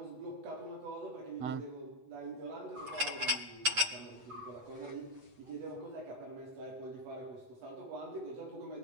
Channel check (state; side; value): late; left; 7.9 ms